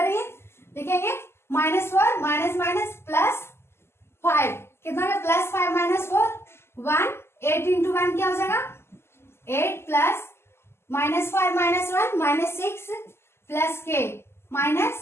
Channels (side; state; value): right; late; 0.12 ms